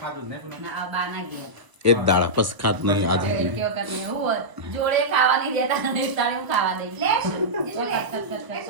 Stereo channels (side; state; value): left; late; 1.0 ms